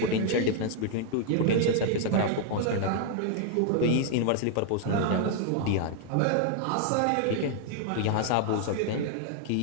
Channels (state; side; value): different; both; correlation 0.00